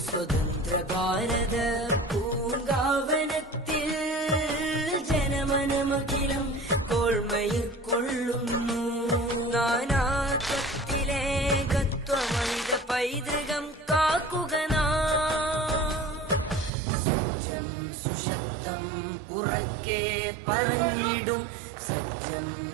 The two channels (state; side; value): drops out; left; at 16.7 s